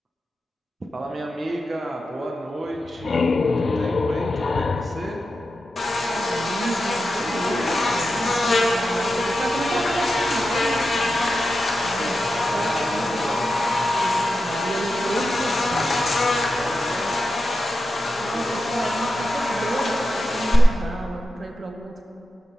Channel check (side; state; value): both; normal; correlation 0.90